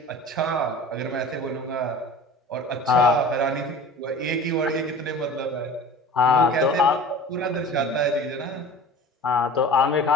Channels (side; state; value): both; normal; correlation 0.40